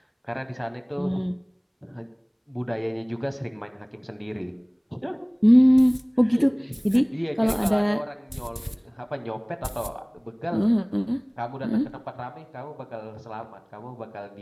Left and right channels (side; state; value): both; identical; correlation 1.00